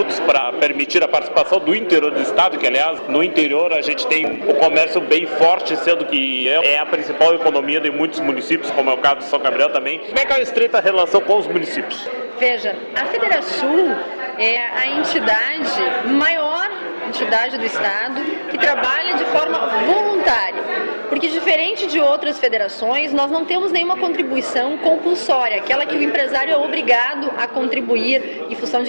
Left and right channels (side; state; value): both; inverted; correlation -1.00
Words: para permitir a participação do interior do estado, que, aliás, no interior a gente tem o comércio bem forte, sendo que é a principal economia de muitos municípios, como é o caso de São Gabriel também. Como é que é a estreita relação com os municípios? Veja, a Federação é a maior entidade do estado que trabalha de forma voluntária, porque diferente de outras federações, nós não temos nenhuma contribuição compulsória, aquela que o empresário é obrigado a contribuir em função